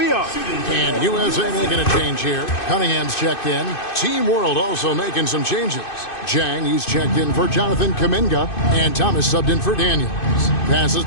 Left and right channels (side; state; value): right; late; 2.6 ms